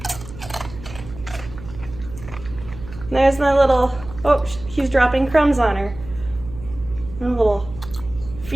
There's my little, oh, he's dropping crumbs on her. My little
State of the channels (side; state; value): right; noise; hum, 14 dB below the sound